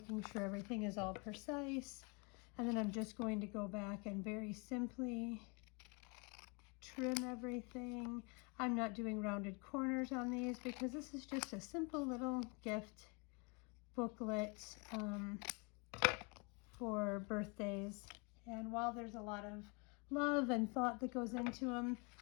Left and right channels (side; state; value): right; quieter; 32.1 dB